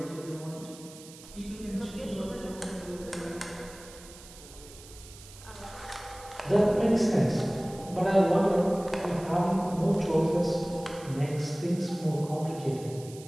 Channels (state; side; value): noise; right; hiss, 18 dB below the sound